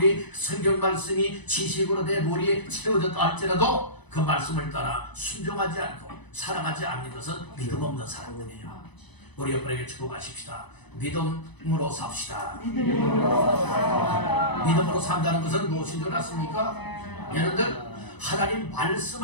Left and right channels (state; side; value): late; right; 1.0 ms